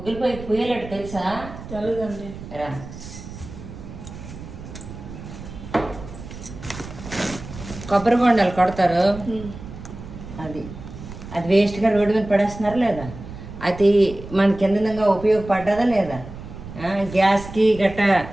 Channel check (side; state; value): right; noise; rumble, 13 dB below the sound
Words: పొయ్యికి పూయలట్టు తెలుసా? తెలీదండి. రా, కొబ్బరి బొండాలు కొడతారు, అది అది వేస్ట్గా రోడ్డు మీద పడేస్తున్నారు లేదా? అది మనకి ఎంతంగా ఉపయోగపడ్డదా లేదా? గ్యాస్కి గట్ట